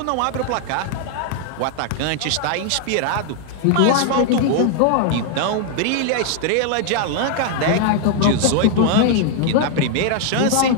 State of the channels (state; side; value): different; both; correlation 0.00